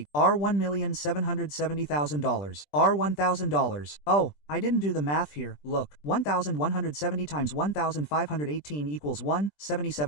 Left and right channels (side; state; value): right; late; 20 ms